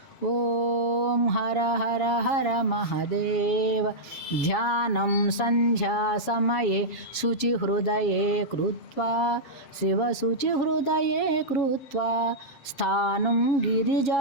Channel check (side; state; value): right; late; 7.2 ms